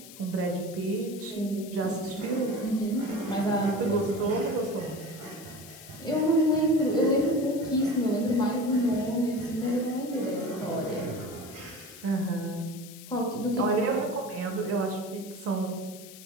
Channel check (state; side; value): noise; left; hiss, 17 dB below the sound